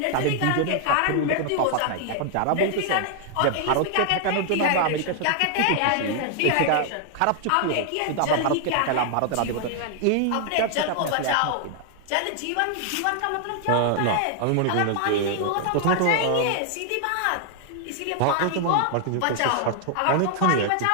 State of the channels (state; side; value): different; both; correlation 0.00